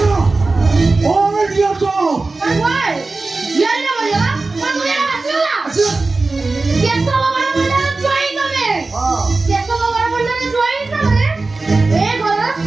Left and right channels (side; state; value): left; quieter; 3.5 dB